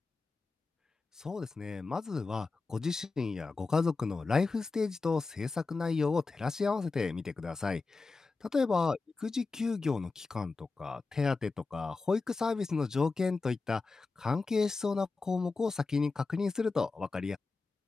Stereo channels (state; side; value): quieter; right; 4.0 dB